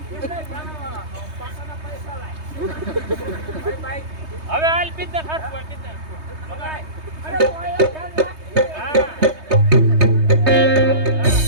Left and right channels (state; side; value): late; left; 3.2 ms